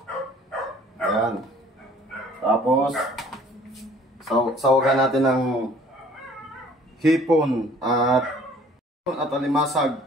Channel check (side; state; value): both; normal; correlation 0.54